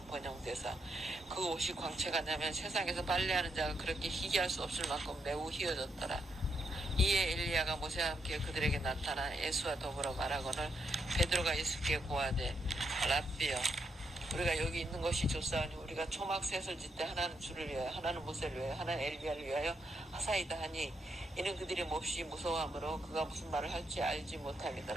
번영되사 그 옷이 광채가 나면 세상에서 빨래하는 자가 그렇게 희귀할 수 없을 만큼 매우 희어졌더라. 이에 엘리야가 모세와 함께 그들에게 나타나 예수와 더불어 말하거늘 베드로가 예수께 고하되 랍비여 우리가 여기 있는 것이 좋사오니 우리가 초막 셋을 짓되 하나는 주를 위하여 하나는 모세를 위하여 하나는 엘리야를 위하여 하사이다 하니 이는 그들이 몹시 무서워하므로 그가 무슨 말을 할지 알지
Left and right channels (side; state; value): both; normal; correlation 0.79